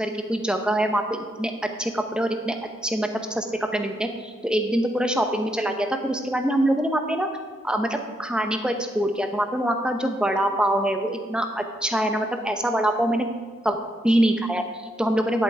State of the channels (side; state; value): both; normal; correlation 0.78